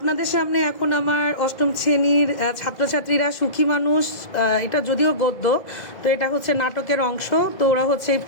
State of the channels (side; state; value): right; late; 2.0 ms